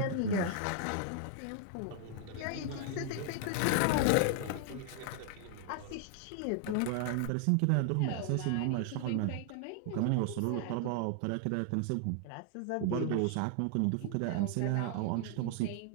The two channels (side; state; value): both; different; correlation 0.00